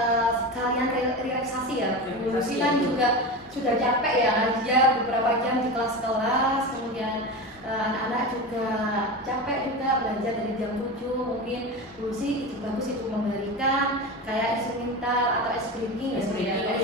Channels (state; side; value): normal; both; correlation 0.24